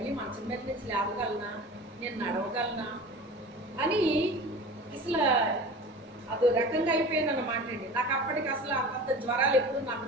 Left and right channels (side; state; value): both; normal; correlation 0.36